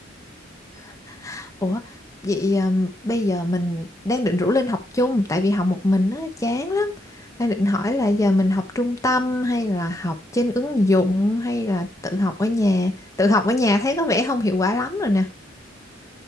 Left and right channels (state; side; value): normal; both; correlation 0.78